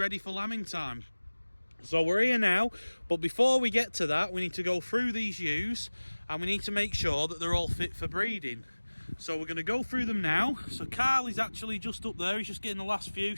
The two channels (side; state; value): both; inverted; correlation -1.00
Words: for lambing time. So we're here now, but before we get to that, we need to go through these ewes and we need to make sure that they're all fit for breeding. So we're going to go through them now. So Karl is actually just up there, he's just getting the last few